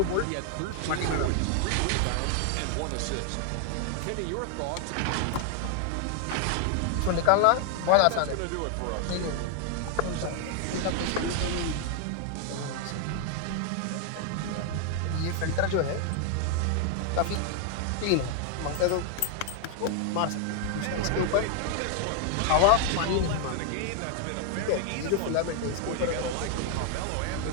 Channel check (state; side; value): different; both; correlation 0.00